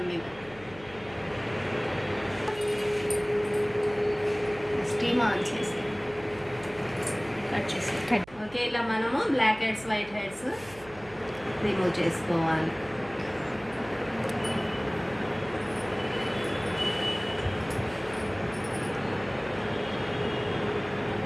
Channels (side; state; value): right; noise; hum, 21 dB below the sound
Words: మీద. స్టీమ్ ఆన్ చేసి కట్ చేసి. ఓకే, ఇలా మనము black heads, white heads remove చేసుకోవాలి.